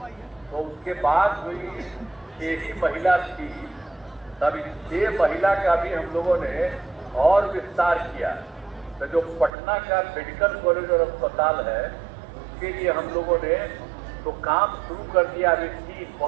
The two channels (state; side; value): drops out; left; at 9.5 s